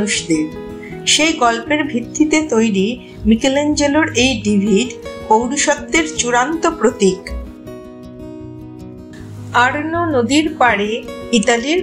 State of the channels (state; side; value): identical; both; correlation 1.00